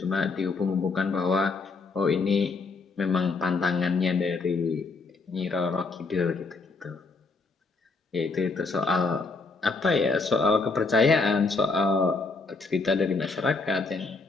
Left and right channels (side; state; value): right; quieter; 4.0 dB